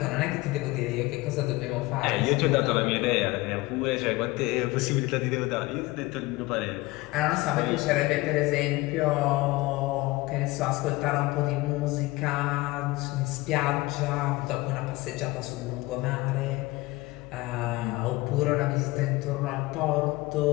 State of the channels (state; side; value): quieter; right; 20.8 dB